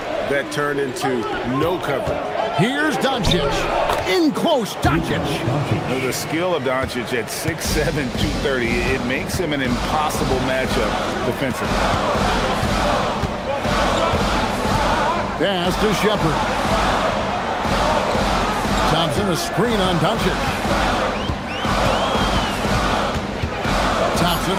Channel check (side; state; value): both; identical; correlation 1.00